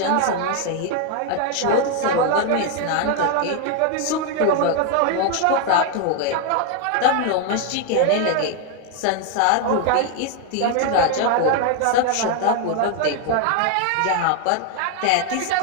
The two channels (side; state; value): both; different; correlation 0.01